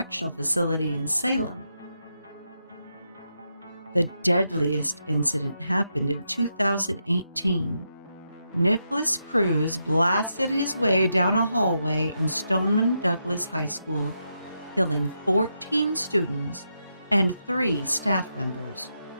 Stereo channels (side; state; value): both; inverted; correlation -0.84